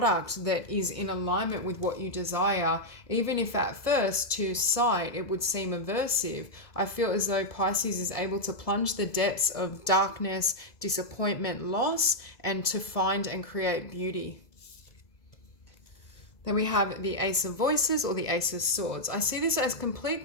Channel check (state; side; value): late; right; 2.0 ms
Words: that is in alignment with what you desire, even if at first to sight it would seem aversive. I feel as though Pisces is able to plunge the depths of darkness, disappointment, loss, and to find and create beauty. Then we have the Ace of Voices or the Ace of Swords. I see this as complete